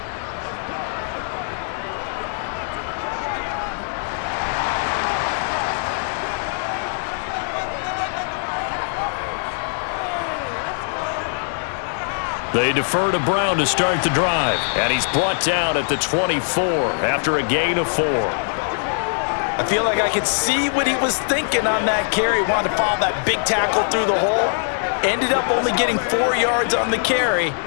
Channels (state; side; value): silent; right; digital silence